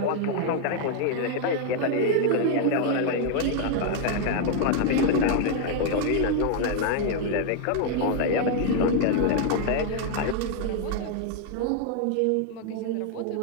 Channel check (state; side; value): different; both; correlation 0.00